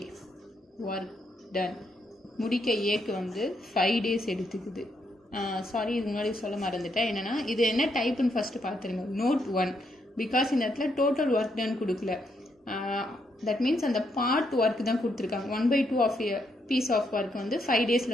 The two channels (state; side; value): normal; both; correlation 0.77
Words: ஒர்க் டன் முடிக்க ஏக்கு வந்து 5 days எடுத்துக்குது. சாரி, இது முன்னாடி சொல்ல மறந்துட்டேன். என்னென்னா இது என்ன டைப்புன்னு ஃபஸ்ட்டு பார்த்துருங்க. நோட் 1. பிகாஸ் இந்த இடத்துல டோட்டல் ஒர்க் டன் கொடுக்கல. தட் மீன்ஸ் அந்த பார்ட் ஒர்க் தான் கொடுத்துருக்காங்க. 1/2 of a piece of work வந்து 5